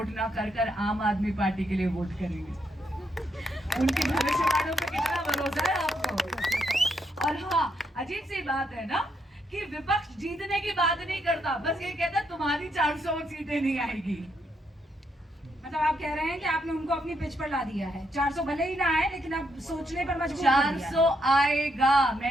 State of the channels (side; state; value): both; normal; correlation 0.77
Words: ना कर आम आदमी पार्टी के लिए वोट करेंगे। उनकी भविष्यवाणियों पे कितना भरोसा है आपको। और हाँ, अजीब सी बात है ना कि विपक्ष जीतने की बात नहीं करता, बस ये कहता तुम्हारी 400 सीटें नहीं आएगी। मतलब आप कह रहे हैं कि आपने उनको अपनी पिच पर ला दिया है। 400 भले ही ना आए, लेकिन अब सोचने पर मजबूर कर दिया। 400 आएगा,